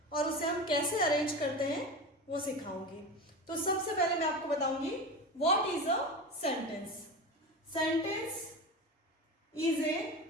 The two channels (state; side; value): normal; both; correlation 0.26